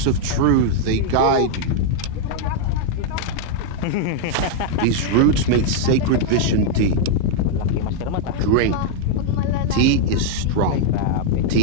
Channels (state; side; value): different; both; correlation -0.01